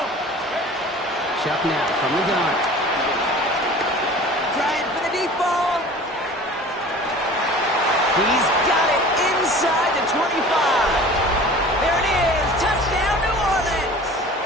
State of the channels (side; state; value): both; normal; correlation 0.42